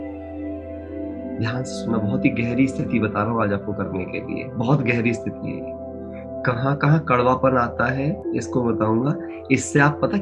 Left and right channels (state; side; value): identical; both; correlation 1.00